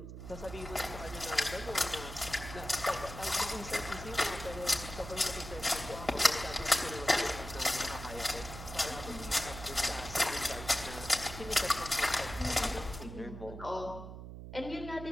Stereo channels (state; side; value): noise; right; hum, 10 dB below the sound